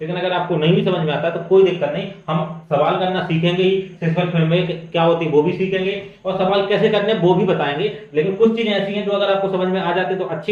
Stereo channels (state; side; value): identical; both; correlation 1.00